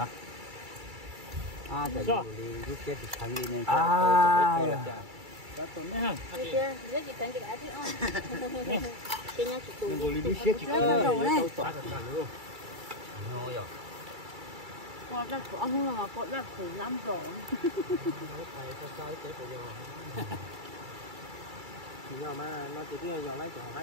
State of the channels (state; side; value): late; left; 2.3 ms